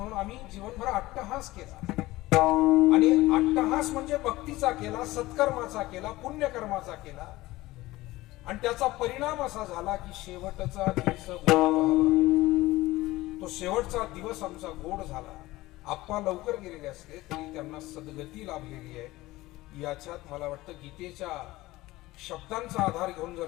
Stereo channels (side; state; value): right; quieter; 18.5 dB